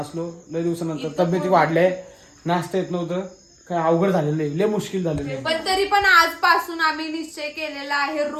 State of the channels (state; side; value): identical; both; correlation 1.00